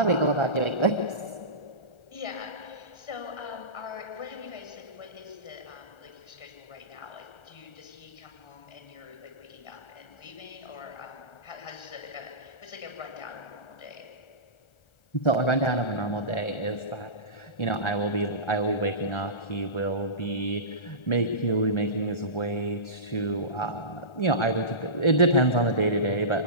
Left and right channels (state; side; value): late; right; 1.3 ms